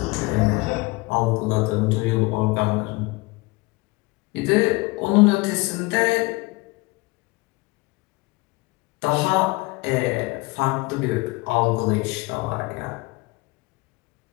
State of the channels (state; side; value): quieter; right; 24.1 dB